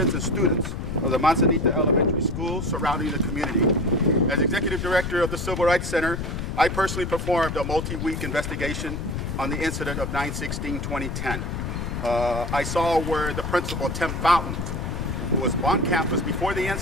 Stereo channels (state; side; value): noise; left; rumble, 4 dB below the sound